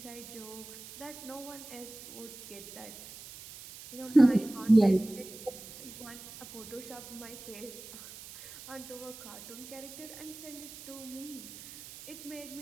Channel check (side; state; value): right; noise; hiss, 14 dB below the sound